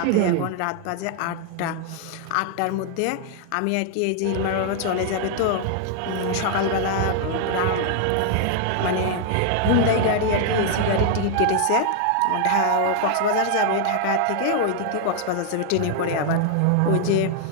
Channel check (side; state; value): both; different; correlation 0.00